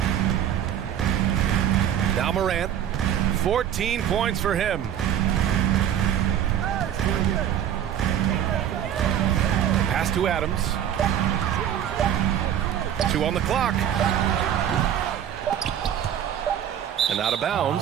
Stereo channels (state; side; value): quieter; left; 10.1 dB